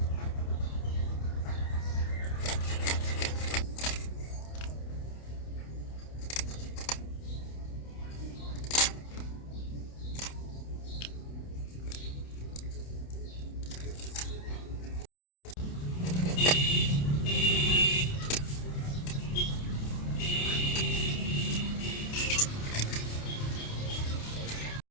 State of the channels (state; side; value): late; right; 28 ms